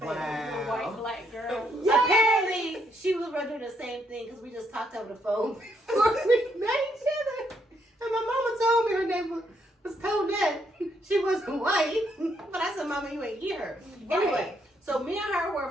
Wow. White black girl. Apparently, she was running the same thing because we just talked over the phone before we met each other. And my mama told me her name was Tonette. She wasn't white. But I said, Mama, you ain't here. Right. Anyway, so me and her were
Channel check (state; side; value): normal; both; correlation 0.74